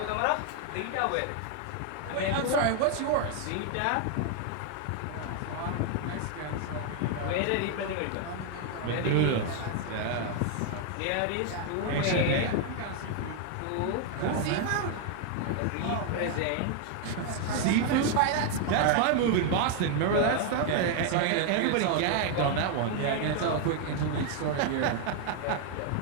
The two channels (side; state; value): both; different; correlation 0.00